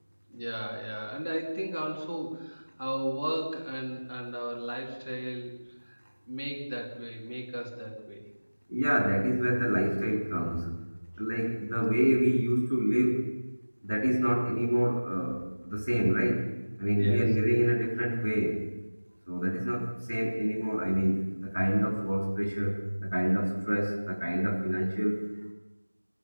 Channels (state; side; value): inverted; both; correlation -1.00